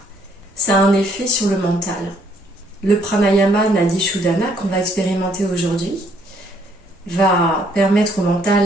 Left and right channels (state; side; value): normal; both; correlation 0.67